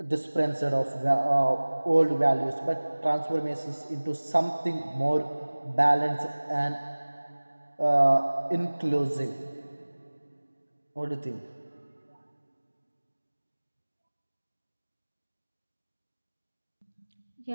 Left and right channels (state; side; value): inverted; both; correlation -1.00